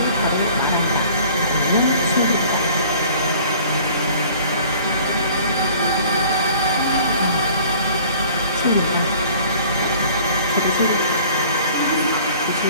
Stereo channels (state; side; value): inverted; both; correlation -0.51